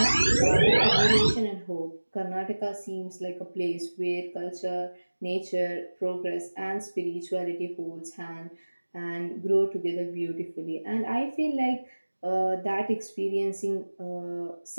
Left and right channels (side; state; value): both; inverted; correlation -1.00